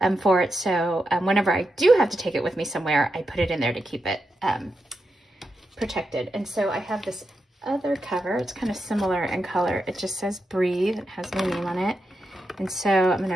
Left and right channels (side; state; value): both; normal; correlation 0.87